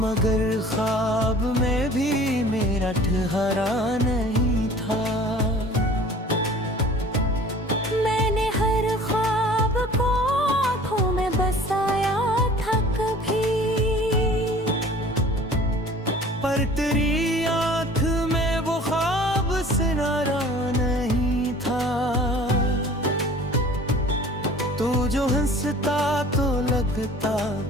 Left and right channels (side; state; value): both; normal; correlation 0.47